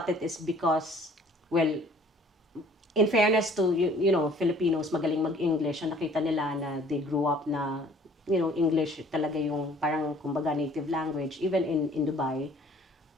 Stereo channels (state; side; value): normal; both; correlation 0.54